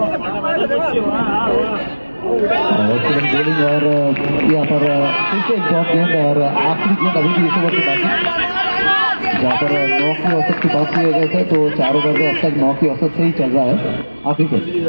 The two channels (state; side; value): inverted; both; correlation -1.00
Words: बॉलिंग और यहाँ पर फिर से एक डॉट गेंद और आखिरी गेंद अभी भी इस ओवर की बाकी, जहाँ पर 9 की औसत की बात किए गए थे, तो 4 ओवर में अब तक 9 की औसत से ही चल रहा है आखिरी गेंद।